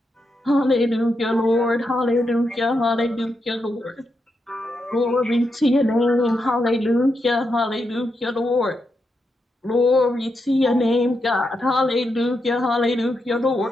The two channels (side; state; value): both; normal; correlation 0.84